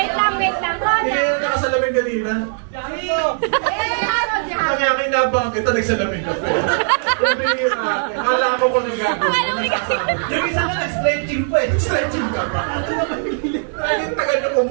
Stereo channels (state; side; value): silent; left; digital silence